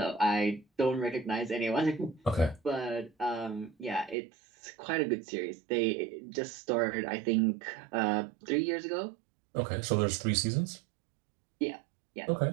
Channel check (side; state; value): left; drops out; at 4.2 s